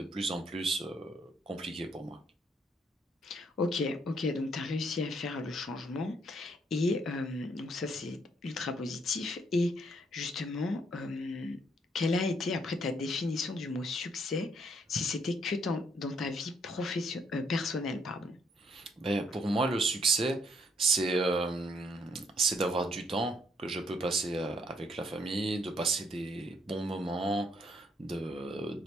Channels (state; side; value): normal; both; correlation 0.69